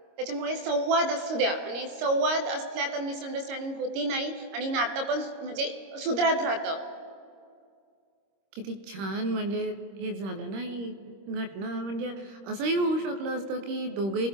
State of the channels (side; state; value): left; late; 26 ms